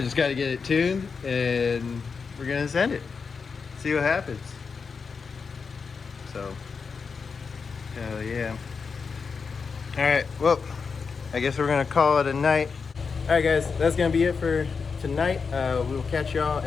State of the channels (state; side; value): quieter; right; 5.3 dB